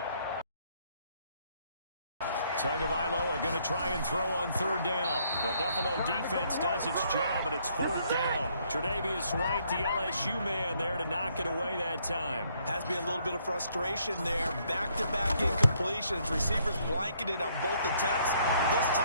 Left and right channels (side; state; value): both; inverted; correlation -0.69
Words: Tagovailoa going to try and throw on 3rd down. The Buffalo defense does its job, and it's 4th down. Tre'Davious White, the LSU man, there to knock it away that time. Has to be a little bit of frustration there. Back-to-back incompletions. Receivers blanketed on both attempts, this